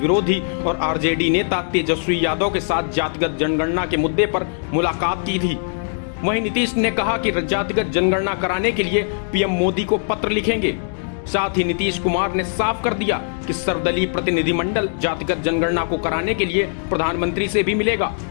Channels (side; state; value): right; silent; digital silence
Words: और आरजेडी नेता तेजस्वी यादव के साथ जातिगत जनगणना के मुद्दे पर मुलाकात की थी। वहीं नीतीश ने कहा कि जातिगत जनगणना कराने के लिए पीएम मोदी को पत्र लिखेंगे। साथ ही नीतीश कुमार ने साफ कर दिया कि सर्वदलीय प्रतिनिधिमंडल जातिगत जनगणना को कराने के लिए प्रधानमंत्री से भी मिलेगा।